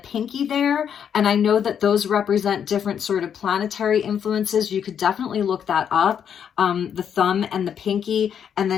pinky there. And I know that those represent different sort of planetary influences. You could definitely look that up. The thumb and the pinky. And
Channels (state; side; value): quieter; right; 8.2 dB